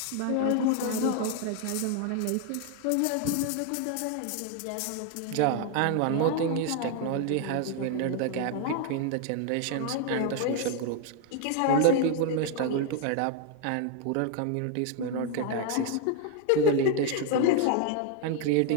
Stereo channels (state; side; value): different; both; correlation 0.00